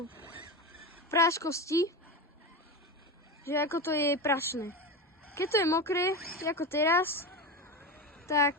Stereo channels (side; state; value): both; normal; correlation 0.21